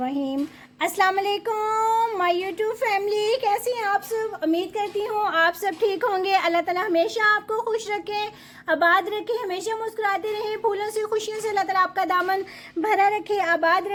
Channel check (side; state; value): both; identical; correlation 1.00